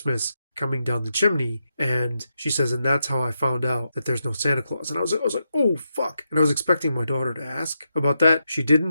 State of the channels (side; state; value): both; inverted; correlation -0.85